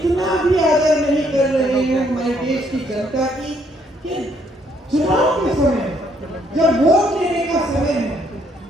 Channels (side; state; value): both; normal; correlation 0.69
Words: भी आदर नहीं कर रहे हैं हमारे देश की जनता की कि चुनाव के समय जब वोट लेने का समय है